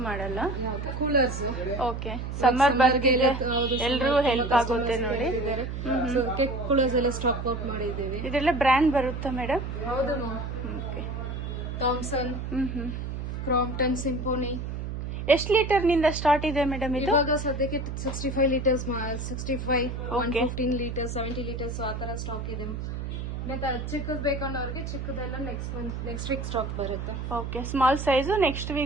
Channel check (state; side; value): noise; right; hum, 5 dB below the sound